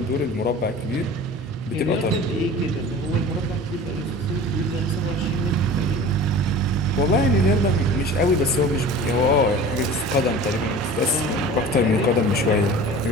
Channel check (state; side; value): normal; both; correlation 0.40